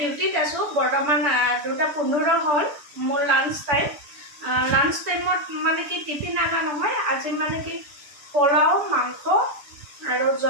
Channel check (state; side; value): late; left; 6.9 ms